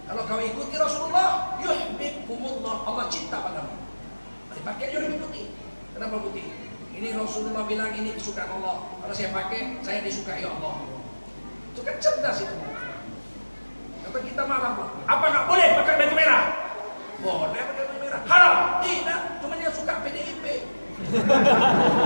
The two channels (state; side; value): inverted; both; correlation -1.00